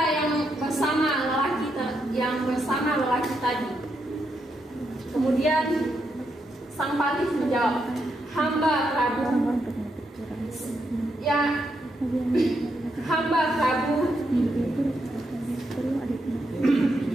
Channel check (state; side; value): normal; both; correlation 0.81